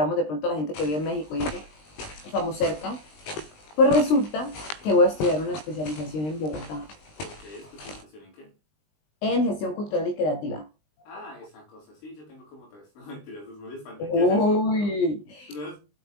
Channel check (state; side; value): late; right; 20 ms